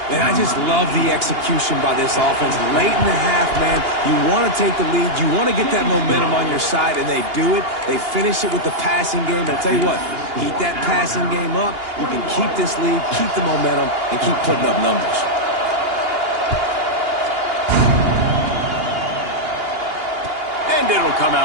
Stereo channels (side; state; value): left; late; 2.8 ms